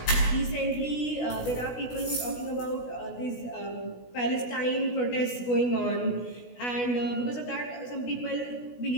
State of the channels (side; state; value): right; late; 16 ms